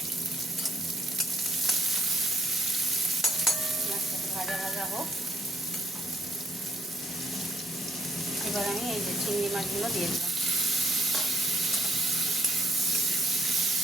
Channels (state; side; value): normal; both; correlation 0.69